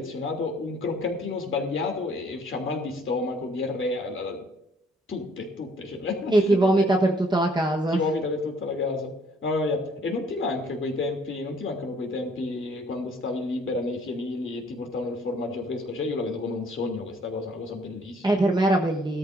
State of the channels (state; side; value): normal; both; correlation 0.61